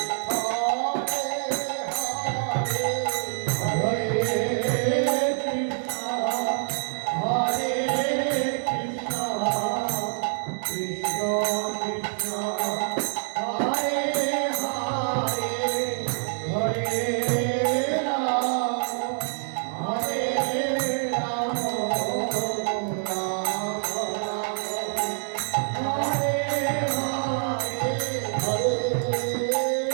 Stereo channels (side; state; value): left; silent; digital silence